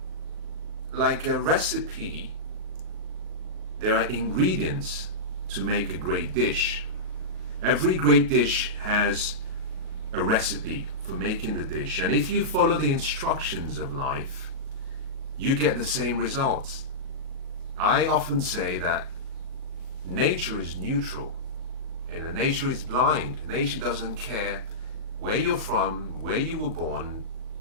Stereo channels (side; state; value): left; late; 37 ms